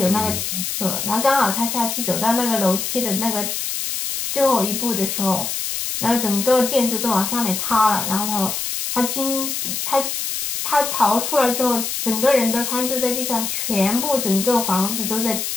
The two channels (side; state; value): left; noise; hiss, 3 dB below the sound